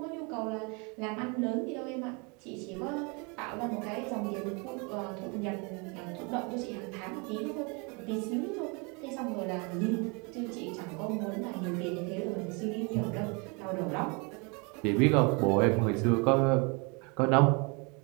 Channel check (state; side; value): quieter; left; 31.7 dB